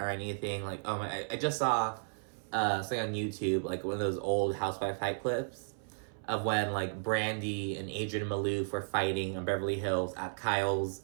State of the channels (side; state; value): left; silent; 55 dB below the other